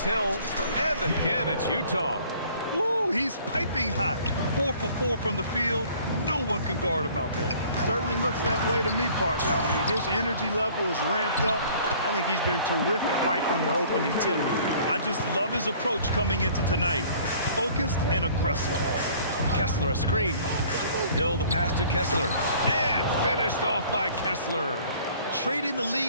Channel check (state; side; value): inverted; both; correlation -0.53